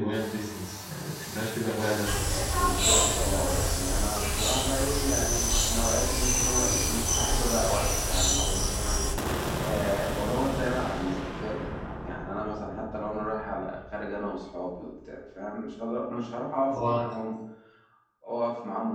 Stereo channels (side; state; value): both; identical; correlation 1.00